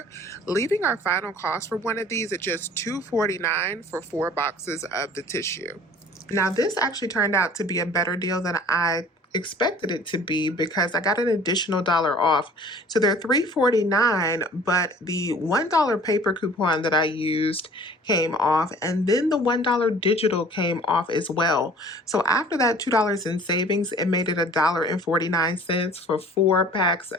leaving our final cost for one of these at just $2.49 for 4 boxes of the tissue. Now this actually turned out to be a better deal than I expected it to be because I got an additional $1 off. So they're $3.49, but the $1 paper coupon that I used came off, and then the $1 digital came off as well. So after that $2 in savings, it made it $1.49 for 4 packs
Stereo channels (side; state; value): both; normal; correlation 0.49